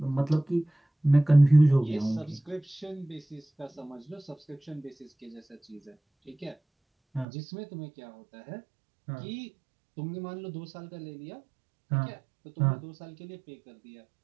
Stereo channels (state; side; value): drops out; left; at 7.2 s